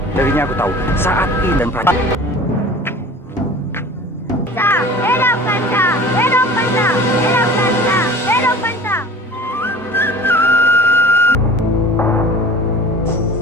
Darinya aku tahu saat ini dan prajurit. Hidup Panca! Hidup Panca! Hidup Panca! Hidup Panca!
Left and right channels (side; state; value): both; normal; correlation 0.41